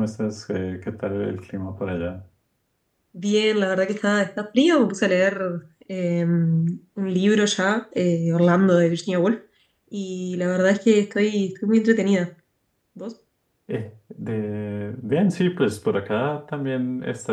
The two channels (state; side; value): identical; both; correlation 1.00